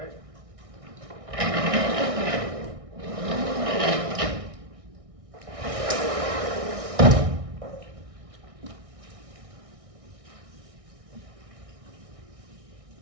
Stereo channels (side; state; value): left; late; 1.6 ms